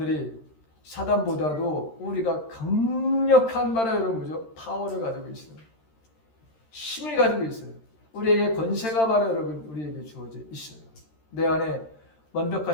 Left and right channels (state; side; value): late; right; 13 ms